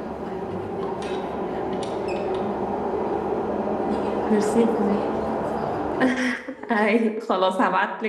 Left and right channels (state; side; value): identical; both; correlation 1.00